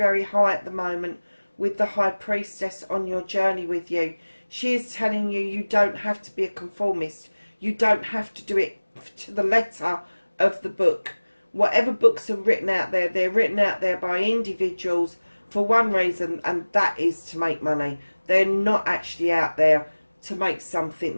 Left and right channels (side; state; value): both; inverted; correlation -1.00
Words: high at the moment with the High Priestess on your journey with you. She is telling you you don't have to be a conformist. You don't have to do it to the letter of the book. Whatever books are written out there, they're written out there by individuals for one reason, and that is to make money. They're not actually out there to make something